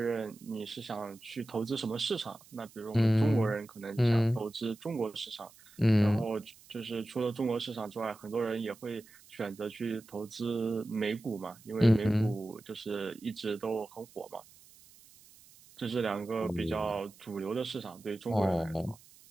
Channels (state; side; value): noise; right; hiss, 24 dB below the sound